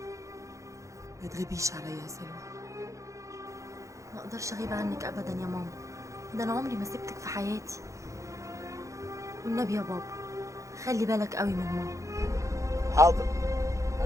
ما تغيبيش عليا يا سلوى. ما اقدرش اغيب عنك ابدا يا ماما، ده انا عمري ما سبتك في حياتي. والنبي يا بابا خلي بالك قوي من ماما. حاضر،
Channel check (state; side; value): late; left; 0.15 ms